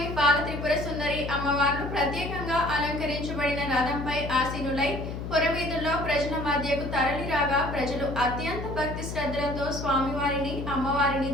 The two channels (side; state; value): left; noise; hum, 6 dB below the sound